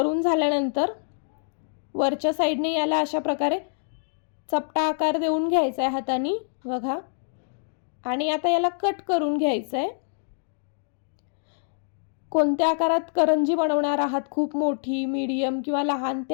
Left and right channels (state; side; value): silent; right; digital silence